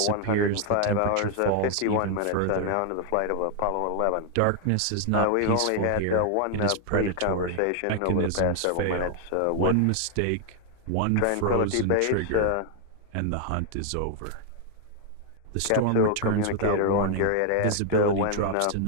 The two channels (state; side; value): different; both; correlation 0.00